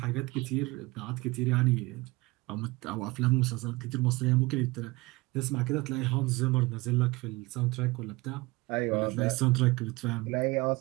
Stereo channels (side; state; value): left; quieter; 23.1 dB